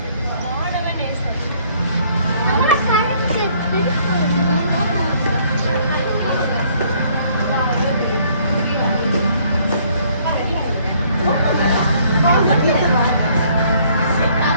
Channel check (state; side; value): inverted; both; correlation -0.63